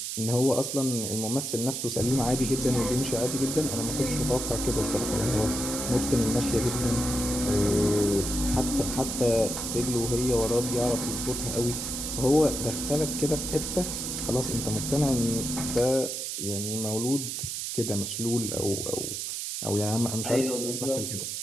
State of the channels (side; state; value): right; noise; hiss, 4 dB below the sound